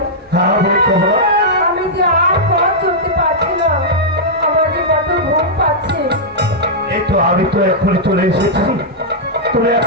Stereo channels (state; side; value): normal; both; correlation -0.09